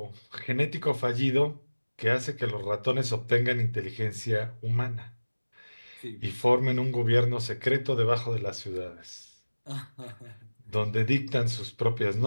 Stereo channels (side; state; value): both; inverted; correlation -1.00